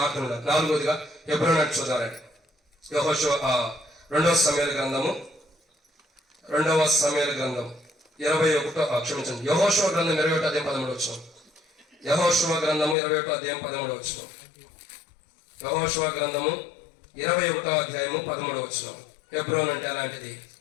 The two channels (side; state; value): right; drops out; at 13.0 s